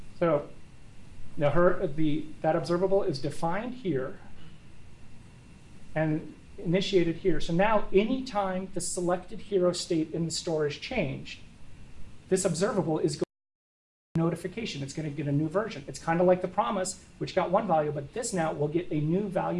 So now that observable is defined here and initiated here. So now anytime the selected hero state in the store is changed, this observable is going to get a notification. It's going to get a new version. It's kind of like the promise, which got one value, but this now will get a new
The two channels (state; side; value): identical; both; correlation 1.00